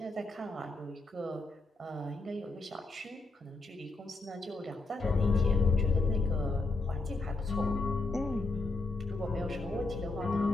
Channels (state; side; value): quieter; right; 3.3 dB